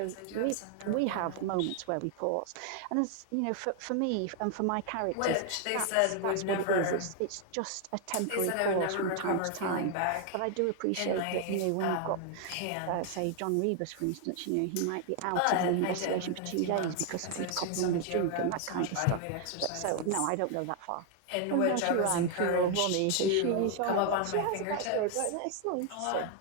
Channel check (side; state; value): both; different; correlation 0.00